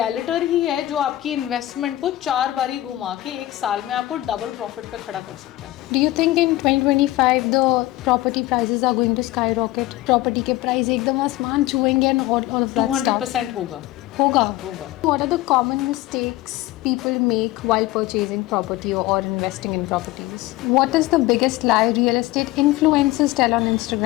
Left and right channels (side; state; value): right; quieter; 16.9 dB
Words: ही है जो आपकी investment को 4 बारी घुमा के एक साल में आपको डबल प्रॉफिट पे खड़ा कर सकता है. Do you think in 2025 the property prices are going to skyrocket? Property के प्राइस एकदम आसमान छुएंगे and all of that stuff? 200% होगा. होगा. होगा. What are the common mistakes people make while purchasing property or investing in properties? What is the biggest lie real estate influencers tell on